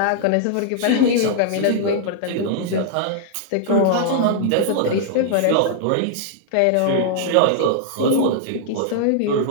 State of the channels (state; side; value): different; both; correlation -0.01